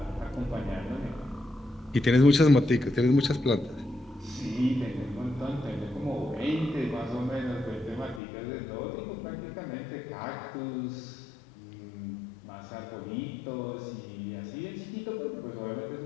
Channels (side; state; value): right; drops out; at 8.2 s